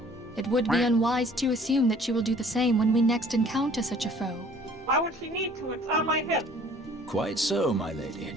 it would be unwise to assume that she will do the same when we next encounter such a foe. Why would she need to? It's on my hip. Quite so, my lady.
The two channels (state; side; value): normal; both; correlation 0.54